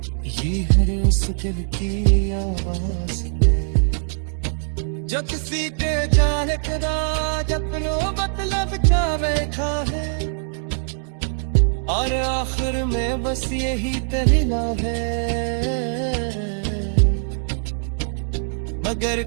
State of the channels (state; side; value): silent; left; digital silence